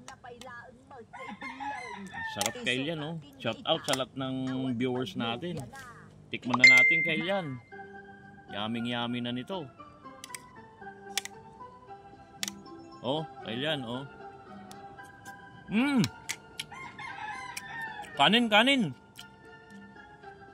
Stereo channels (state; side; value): identical; both; correlation 1.00